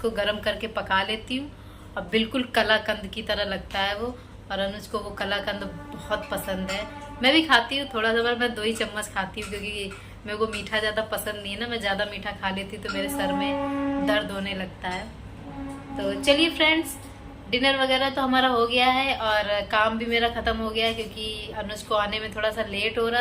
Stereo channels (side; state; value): both; identical; correlation 1.00